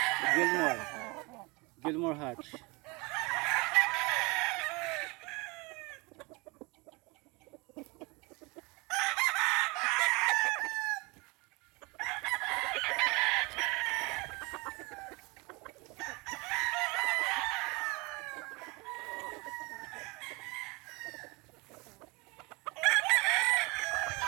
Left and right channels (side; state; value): left; quieter; 26.5 dB